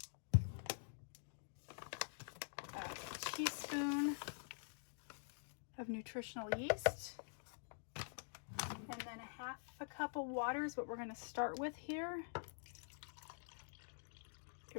A teaspoon of nutritional yeast. And then 1/2 cup of water is what we're going to start with here.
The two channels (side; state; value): right; silent; digital silence